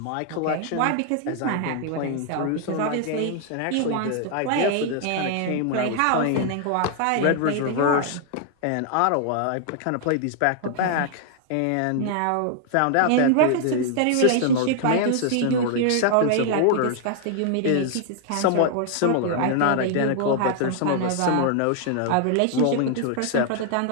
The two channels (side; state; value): both; different; correlation 0.00